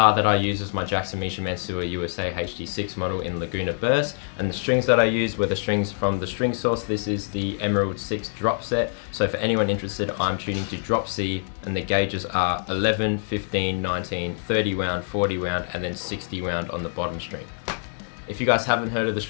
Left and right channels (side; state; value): right; silent; digital silence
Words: that I use is my Jackson Misha Mansour USA HD6 model in Laguna Burst, and the strings that I used were the strings from the string source. This is the Emerald 6 drop set. So for anyone interested, I'm tuning to drop C, and the gauges are 11, 15, 19, 30 wound, 40 wound, and then 60 wound on the bottom string. If you guys haven't heard of the